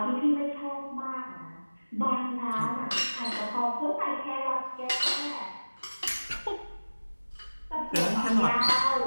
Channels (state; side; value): inverted; both; correlation -1.00